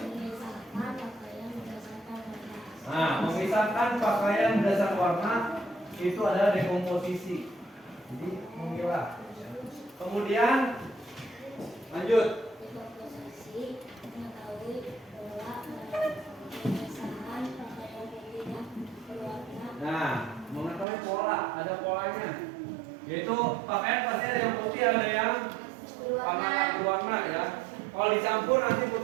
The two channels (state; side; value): drops out; left; at 20.9 s